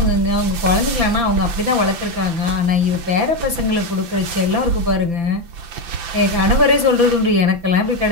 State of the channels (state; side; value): late; left; 5.9 ms